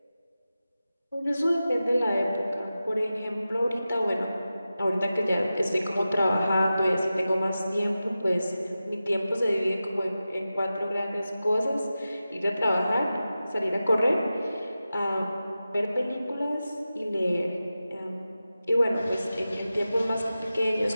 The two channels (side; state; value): both; inverted; correlation -0.94